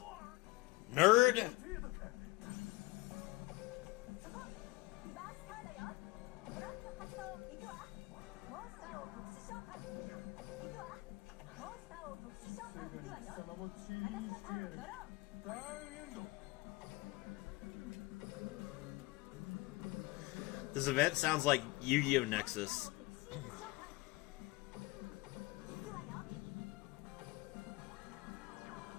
nerd! This event sounds like Yu-Gi-Oh! Nexus.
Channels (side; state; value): right; quieter; 21.3 dB